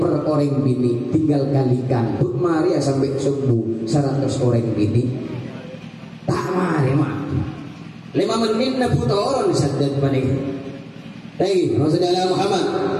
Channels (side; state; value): both; identical; correlation 1.00